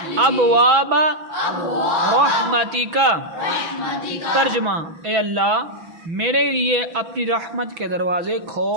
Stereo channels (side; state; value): left; late; 6.1 ms